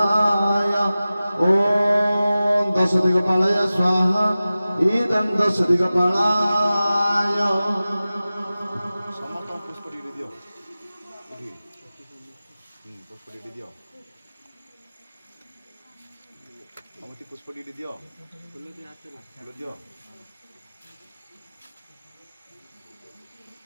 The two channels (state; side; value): inverted; both; correlation -0.96